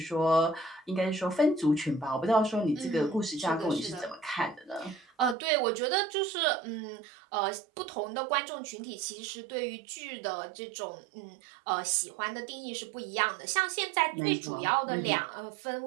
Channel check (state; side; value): drops out; left; at 5.4 s